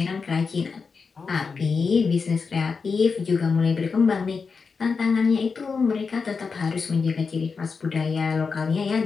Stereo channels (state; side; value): quieter; right; 5.1 dB